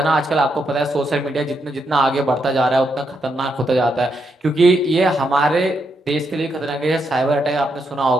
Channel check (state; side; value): normal; both; correlation 0.80